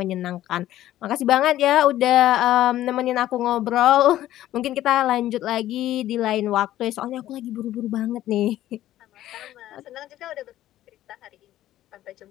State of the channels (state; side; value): quieter; right; 13.6 dB